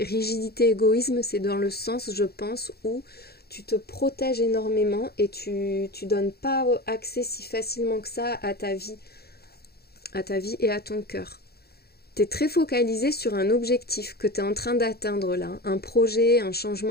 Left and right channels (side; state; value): right; late; 0.46 ms